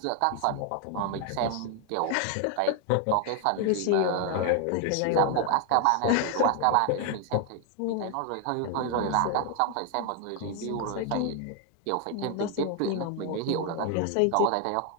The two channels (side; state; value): both; different; correlation 0.00